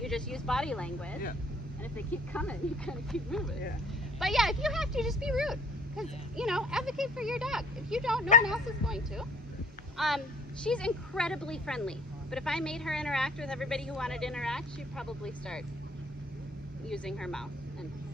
You just use body language. Yeah. And if they keep coming, you kind of keep moving. Yeah. But yeah, if you have to, just be rude. Because, advocate for your dog. If you don't, no one else is going to. She's incredibly friendly. But if I made her interact with everybody who wanted to interact, she'd probably start using her mouth and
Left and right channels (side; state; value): both; normal; correlation 0.55